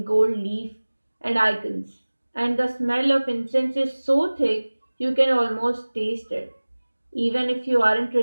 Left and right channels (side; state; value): both; inverted; correlation -1.00